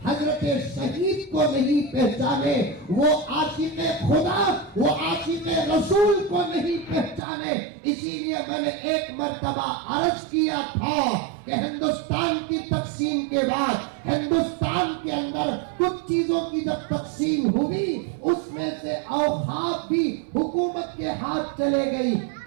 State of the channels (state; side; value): drops out; left; at 7.2 s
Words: حضرت شہید کو نہیں پہچانے، وہ عاشق خدا، وہ عاشق رسول کو نہیں پہچانے۔ اسی لیے میں نے ایک مرتبہ عرض کیا تھا کہ ہندوستان کی تقسیم کے بعد ہندوستان کے اندر کچھ چیزوں کی جب تقسیم ہوئی اس میں سے اوقاف بھی حکومت کے ہاتھ چلے گئی۔